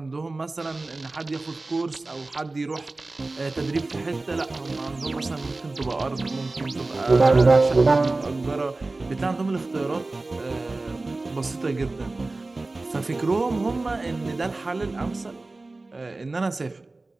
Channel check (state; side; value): quieter; left; 3.2 dB